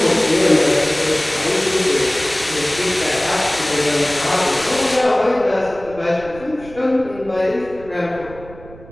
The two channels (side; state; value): right; noise; rumble, 19 dB below the sound